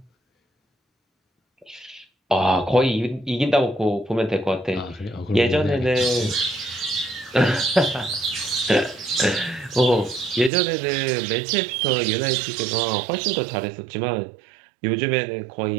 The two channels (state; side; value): drops out; left; at 10.5 s